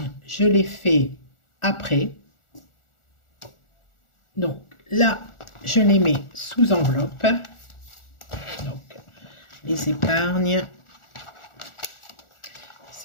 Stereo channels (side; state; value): right; late; 1.4 ms